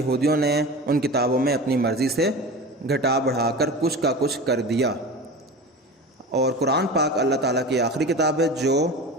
نے ان کتابوں میں اپنی مرضی سے گھٹا بڑھا کر کچھ کا کچھ کر دیا، اور قرآن پاک اللہ تعالیٰ کی آخری کتاب ہے جو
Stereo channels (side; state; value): both; normal; correlation 0.32